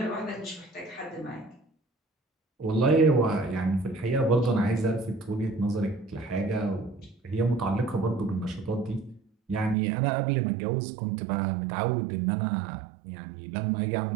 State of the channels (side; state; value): left; drops out; at 9.8 s